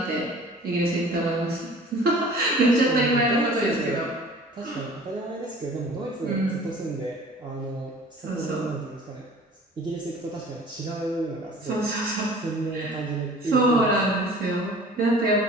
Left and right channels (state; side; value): normal; both; correlation 0.47